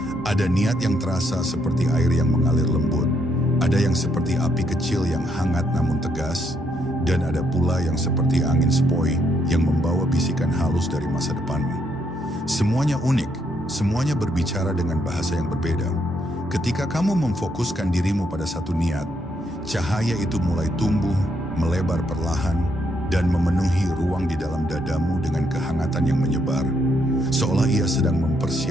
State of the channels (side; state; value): both; normal; correlation 0.75